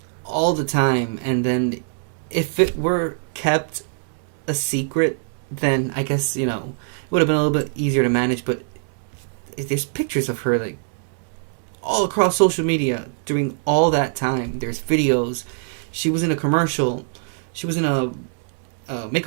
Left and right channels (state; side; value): silent; left; digital silence